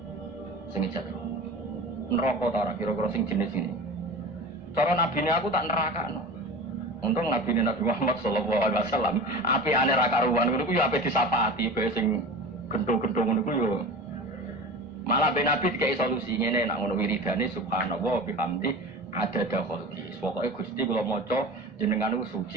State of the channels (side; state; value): both; normal; correlation 0.33